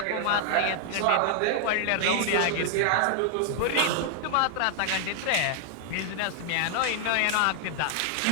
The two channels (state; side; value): different; both; correlation 0.00